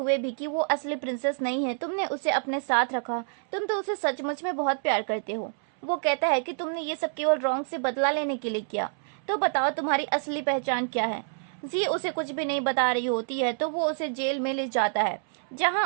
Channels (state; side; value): silent; left; 60 dB below the other